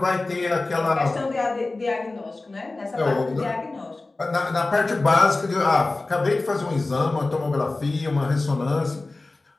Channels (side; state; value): right; quieter; 3.2 dB